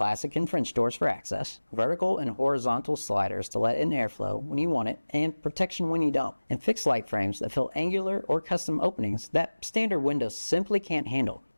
and French doors for access, vertical and horizontal sliders to let in airflow when you want it, and protection when you don't, and fixed light frames that fill angular or custom openings that standard windows simply can't handle.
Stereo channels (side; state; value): both; inverted; correlation -1.00